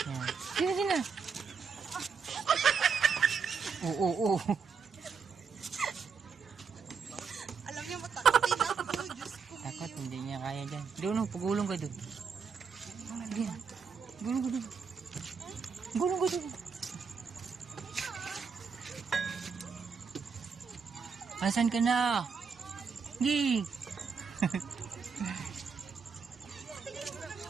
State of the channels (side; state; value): left; quieter; 5.7 dB